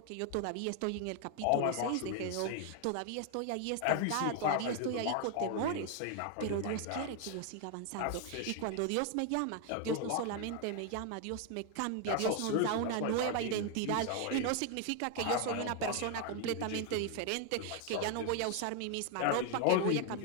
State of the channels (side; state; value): both; different; correlation 0.01